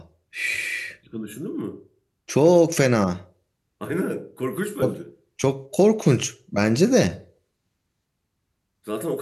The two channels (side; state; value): both; identical; correlation 1.00